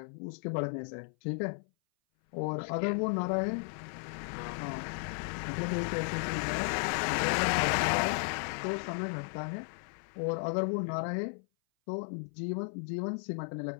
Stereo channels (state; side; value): silent; right; 55 dB below the other